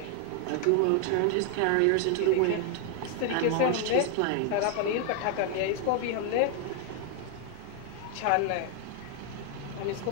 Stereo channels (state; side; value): different; both; correlation 0.00